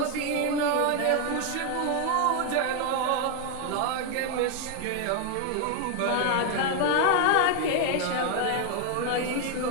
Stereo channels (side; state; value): both; different; correlation 0.01